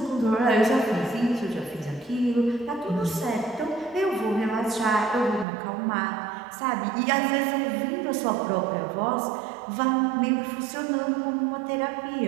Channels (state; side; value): drops out; left; at 5.5 s